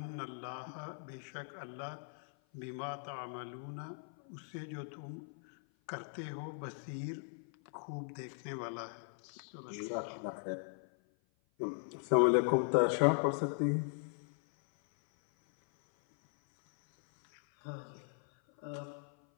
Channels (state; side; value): silent; right; 52 dB below the other